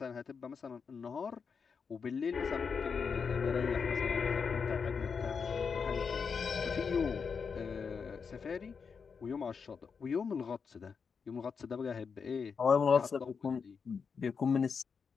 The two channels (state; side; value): quieter; right; 5.8 dB